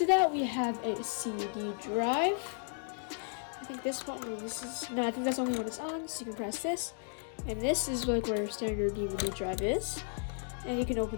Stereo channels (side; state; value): right; silent; 55 dB below the other